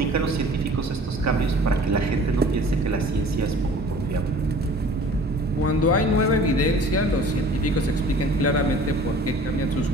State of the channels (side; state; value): both; normal; correlation 0.47